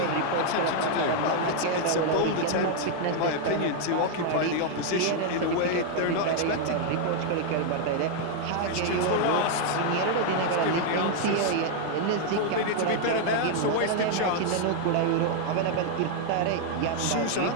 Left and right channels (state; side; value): different; both; correlation 0.00